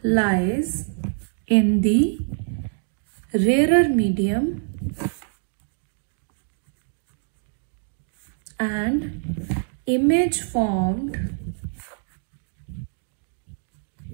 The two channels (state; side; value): silent; left; digital silence